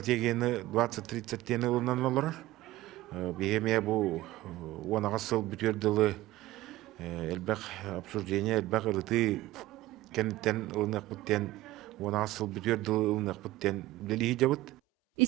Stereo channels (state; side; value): quieter; left; 16.9 dB